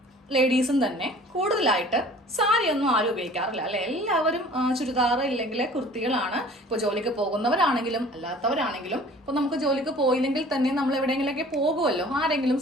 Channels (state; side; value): normal; both; correlation 0.48